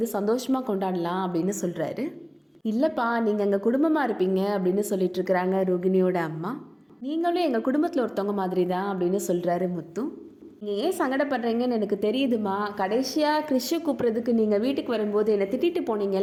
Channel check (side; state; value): both; identical; correlation 1.00